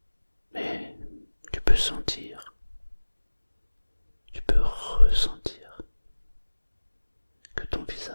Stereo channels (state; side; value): inverted; both; correlation -1.00